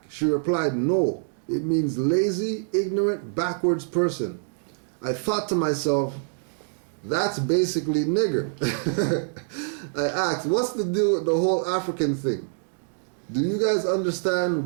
She replied, no, it means lazy, ignorant, backwards person. I thought to myself, that's basically nigger. I asked, what's the deal with the whole African thing? Do you guys understand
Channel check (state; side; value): silent; left; digital silence